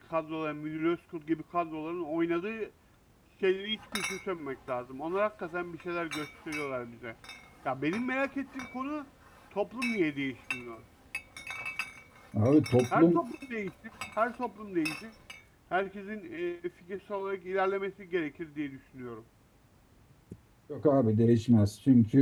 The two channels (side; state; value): both; identical; correlation 1.00